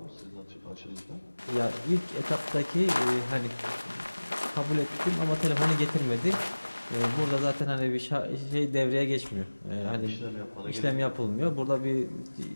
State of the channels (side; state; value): both; inverted; correlation -1.00